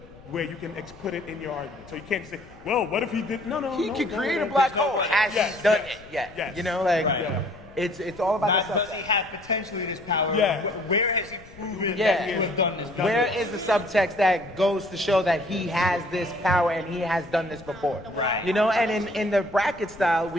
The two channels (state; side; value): noise; left; rumble, 22 dB below the sound